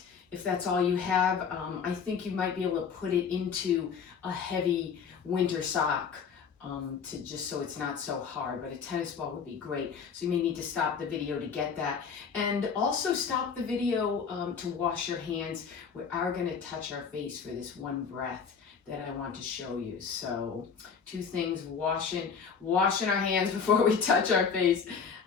if that's all you have. I think you might be able to put it into a heavy winter sock to just so it's not so hard, but a tennis ball would be great. So you may need to stop the video to get that. And also stop the video to wash your hands. We are going to touch our face for this one breath that I want to show you. So two things, washing our hands before we touch our face.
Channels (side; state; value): right; quieter; 6.3 dB